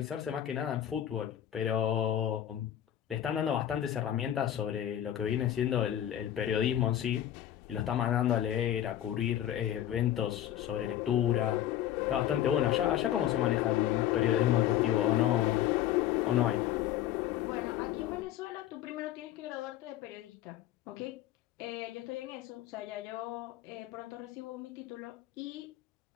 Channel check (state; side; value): quieter; right; 11.5 dB